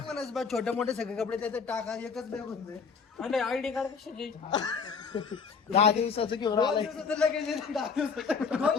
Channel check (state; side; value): quieter; right; 5.6 dB